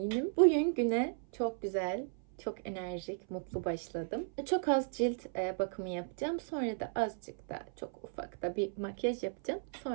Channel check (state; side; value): silent; left; 54 dB below the other